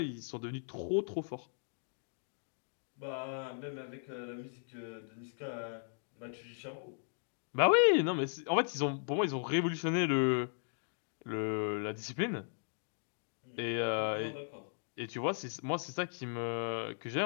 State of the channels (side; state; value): right; silent; digital silence